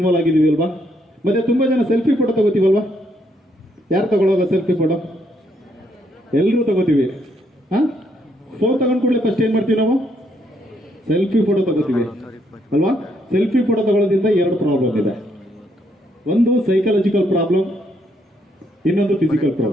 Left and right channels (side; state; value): both; normal; correlation 0.73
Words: ಆಗಿದ್ದೀವಿ ಅಲ್ವಾ. ಮತ್ತೆ ತುಂಬಾ ಜನ ಸೆಲ್ಫಿ ಫೋಟೋ ತಗೋತೀವಲ್ವಾ. ಯಾರು ತಗೊಳ್ಳೋಲ್ಲ ಸೆಲ್ಫಿ ಫೋಟೋ? ಎಲ್ಲರೂ ತಗೋತೀವಿ. ಫೋನ್ ತಗೊಂಡ್ ಕೂಡಲೇ ಫಸ್ಟ್ ಏನ್ ಮಾಡ್ತೀವಿ ನಾವು? ಸೆಲ್ಫಿ ಫೋಟೋ ತಗೋತೀವಿ ಅಲ್ವಾ. ಸೆಲ್ಫಿ ಫೋಟೋ ತಗೊಳ್ಳೋದ್ರಿಂದ 2 ಪ್ರಾಬ್ಲಮ್ ಇದೆ. ಒಂದು ಸೈಕಾಲಜಿಕಲ್ ಪ್ರಾಬ್ಲಮ್, ಇನ್ನೊಂದು ಫಿಸಿಕಲ್